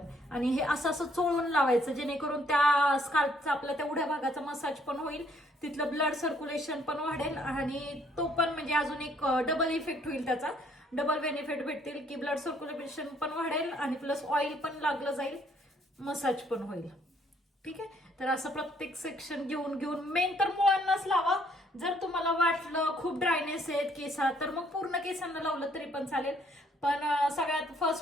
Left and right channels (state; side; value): normal; both; correlation 0.66